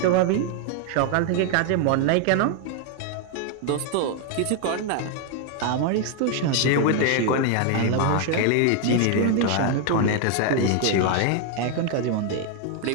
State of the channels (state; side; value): different; both; correlation 0.01